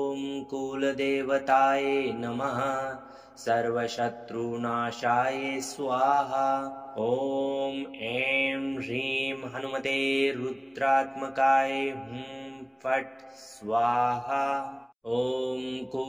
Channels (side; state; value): both; identical; correlation 1.00